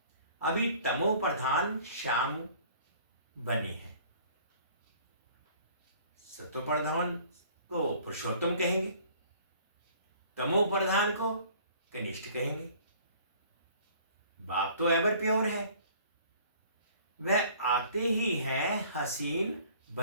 अभी तमो प्रधान श्याम बने हैं। सतो प्रधान को पुरुषोत्तम कहेंगे, तमो प्रधान को कनिष्ठ कहेंगे। बाप तो एवर प्योर है, वह आते ही हैं हसीन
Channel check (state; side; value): inverted; both; correlation -0.52